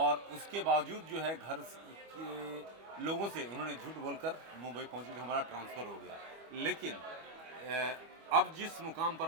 उसके बावजूद जो है घर के लोगों से उन्होंने झूठ बोलकर मुंबई पहुंचे कि हमारा ट्रांसफ़र हो गया। लेकिन अब जिस मुकाम पर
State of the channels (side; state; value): left; late; 25 ms